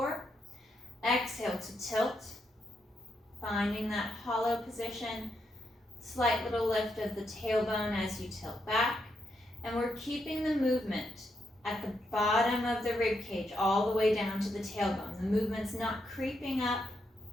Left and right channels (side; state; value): both; normal; correlation 0.81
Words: Exhale to tilt, finding that hollow position. Slight little lift of the tailbone as you tilt back. And we're keeping the movement at the bottom of the rib cage all the way down to the tailbone. The movement's not creeping up